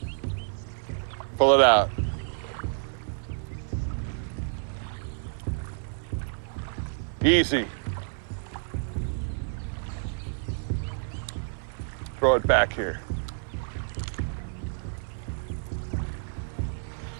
Pull it out. Easy. Throw it back here.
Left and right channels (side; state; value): left; silent; 55 dB below the other